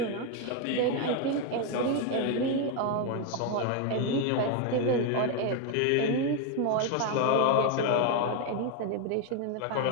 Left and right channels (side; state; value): both; different; correlation 0.01